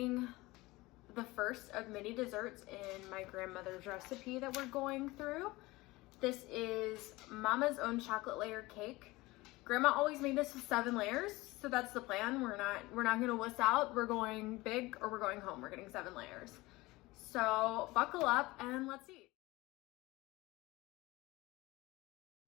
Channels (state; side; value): quieter; right; 20.7 dB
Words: the first of many desserts in my grandmother's recipe that we're going through. This is Mama's Own chocolate layer cake. Grandma always made this with 7 layers, so that's the plan. We're not gonna wuss out. We're going big or we're going home. We're getting 7 layers. So buckle up and let's eat.